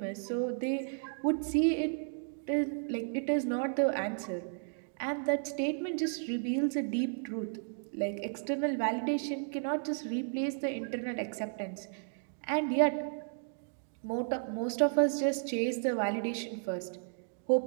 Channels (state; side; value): silent; left; digital silence